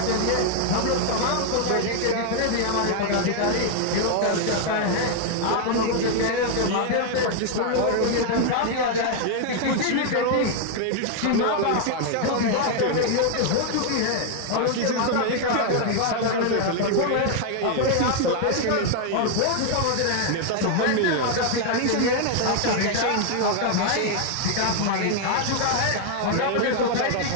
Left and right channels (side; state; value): both; different; correlation 0.00